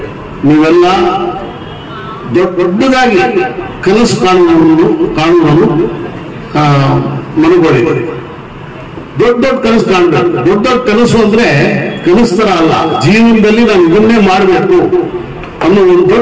ನೀವೆಲ್ಲ ದೊಡ್ಡದಾಗಿ ಕನಸು ಕಾಣುವುದನ್ನು ಮನಗೊಳ್ಳಿ. ದೊಡ್ಡ ಕನಸು ಕಾಣಬೇಕು. ದೊಡ್ಡ ಕನಸು ಅಂದ್ರೆ ಕನಸು ತರ ಅಲ್ಲ, ಜೀವನದಲ್ಲಿ ನಾವು ಇದನ್ನೇ ಮಾಡಬೇಕು ಅನ್ನೋ ಒಂದು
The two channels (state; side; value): identical; both; correlation 1.00